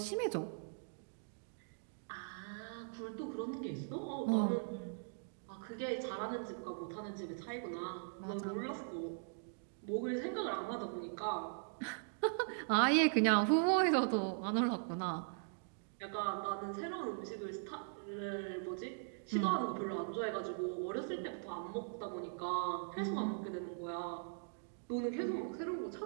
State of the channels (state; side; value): silent; left; digital silence